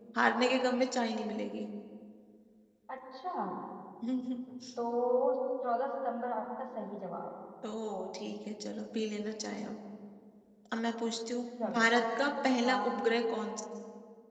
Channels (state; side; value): identical; both; correlation 1.00